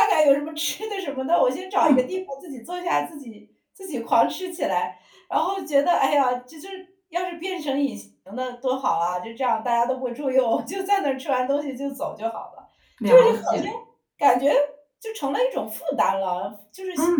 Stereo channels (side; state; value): both; identical; correlation 1.00